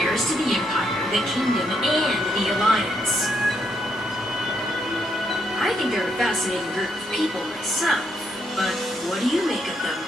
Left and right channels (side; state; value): both; normal; correlation 0.76